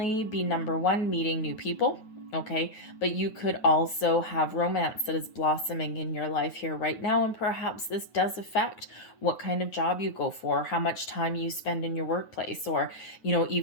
be, number one, meeting new people, okay, but you could also have romance that is blossoming in your life here right now, and perhaps this does affect what kind of job you go for, how much time you spend in your workplace, or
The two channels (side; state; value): right; late; 9.3 ms